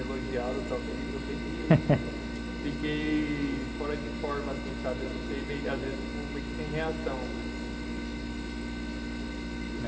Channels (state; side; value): identical; both; correlation 1.00